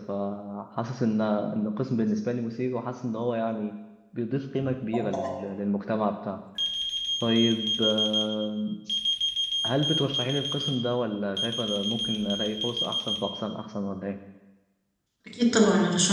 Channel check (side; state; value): both; identical; correlation 1.00